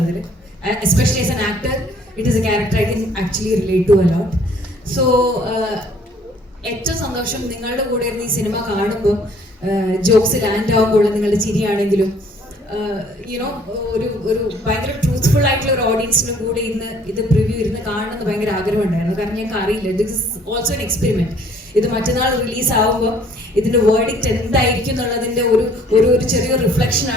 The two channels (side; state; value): both; normal; correlation 0.59